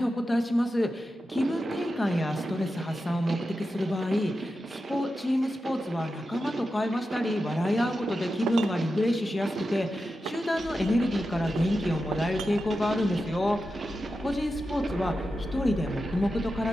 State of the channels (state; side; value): normal; both; correlation 0.90